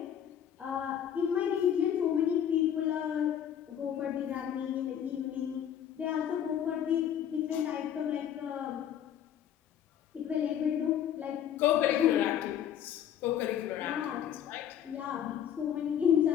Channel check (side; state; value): right; quieter; 9.6 dB